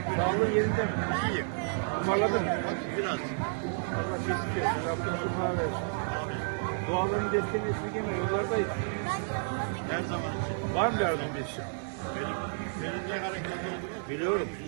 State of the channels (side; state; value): left; silent; digital silence